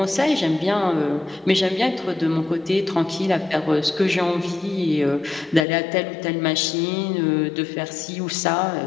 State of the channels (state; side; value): drops out; right; at 5.7 s